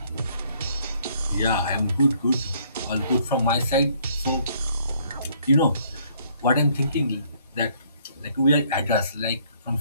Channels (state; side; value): inverted; both; correlation -0.64